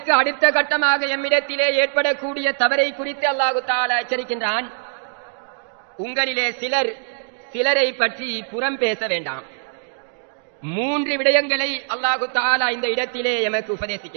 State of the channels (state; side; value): silent; left; digital silence